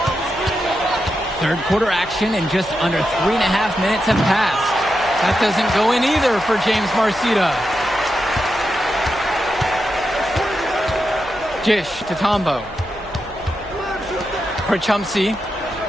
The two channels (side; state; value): right; noise; hum, 20 dB below the sound